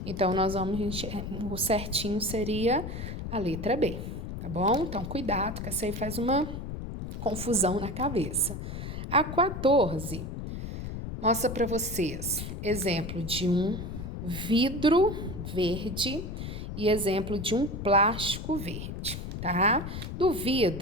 Então, nós vamos enxergar, o certinho seria a letra B, tá bom? Então, cuidado, que essa aí faz uma confusão na cabeça. A 14 mostra para vocês exemplo de um vidro verde e exemplo de um plástico verde, tá? Do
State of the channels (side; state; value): left; noise; rumble, 7 dB below the sound